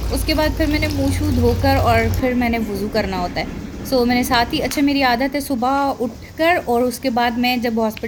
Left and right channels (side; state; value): both; identical; correlation 1.00